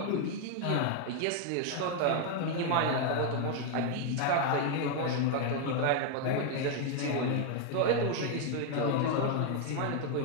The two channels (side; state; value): both; different; correlation 0.01